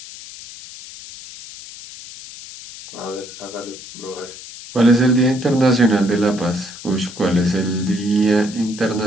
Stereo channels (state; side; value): noise; left; hiss, 15 dB below the sound